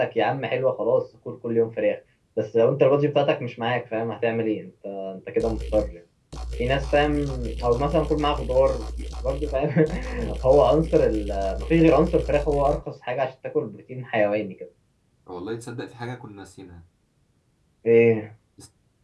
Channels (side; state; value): both; identical; correlation 1.00